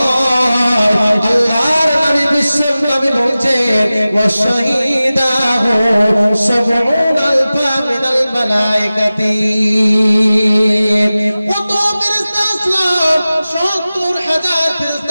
আল্লাহর নবী বিশ্ব নবী বলছেন, ওয়া শাহিদাহু সাবউন আলফা মিনাল মালায়েকাতি। কত ফেরেশতা আসলাম, 70,000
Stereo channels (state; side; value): inverted; both; correlation -0.96